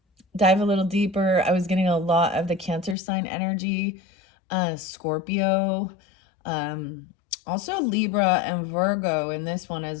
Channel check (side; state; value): right; drops out; at 3.0 s